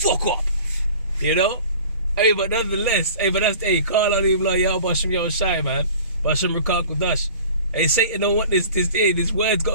up. Hey, but nonetheless, call on him like Yahweh Ba'Hashem Yahweh Shai, man. Ba'Hashem Ruach HaKodesh. Hey, Satan don't want this word's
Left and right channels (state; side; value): inverted; both; correlation -0.43